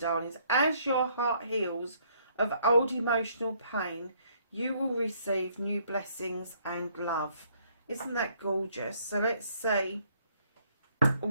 as your heart heals of old emotional pain, you will receive new blessings and love. Isn't that gorgeous? So let's see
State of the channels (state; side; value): inverted; both; correlation -0.66